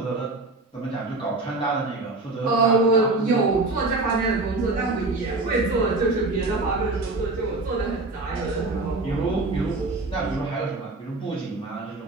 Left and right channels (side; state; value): left; quieter; 3.2 dB